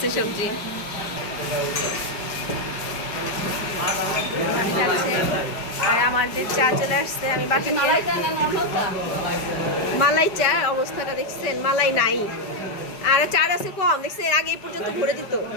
সবজি আর আমাদের চা চলে আসছে। আমি বাকি মালাই চা অবস্থাটা দেখছেন, মালাই নাই। আর চার আছে কম, দেখছেন আগে এই পর্যন্ত ভরে দিত।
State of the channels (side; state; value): right; late; 5.2 ms